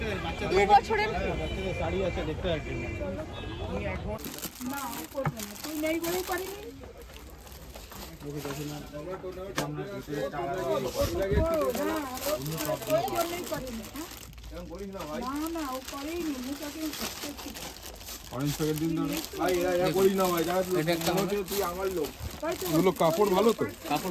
2 বছরের শাড়ি আছে দেখতে পাচ্ছি না করবে না, তুই নেই বলেই পারিনি। না ও করেইনি, কাপড় ভালো তো,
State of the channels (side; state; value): both; identical; correlation 1.00